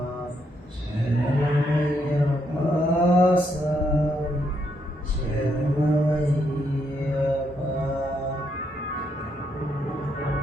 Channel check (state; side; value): normal; both; correlation 0.76